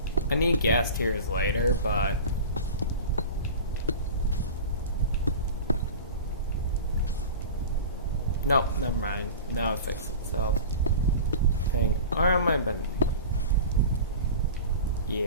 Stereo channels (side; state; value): both; inverted; correlation -0.33